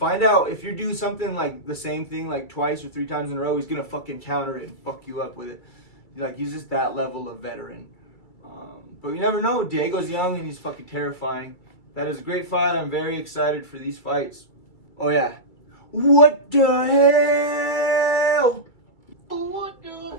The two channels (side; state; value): right; late; 2.3 ms